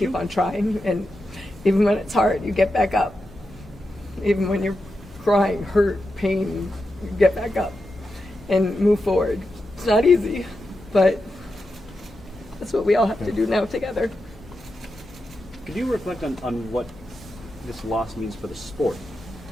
on trying, and even when it's hard, you get back up. Even when you're crying, hurt, pain, you get back up and move forward. It's not easy, but that's what we all have to do now together. Could you reflect on what this loss means for the sport,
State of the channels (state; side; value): normal; both; correlation 0.89